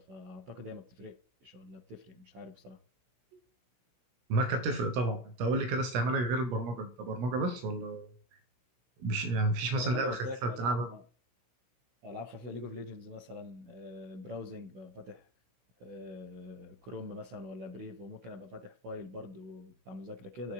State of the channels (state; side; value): late; left; 16 ms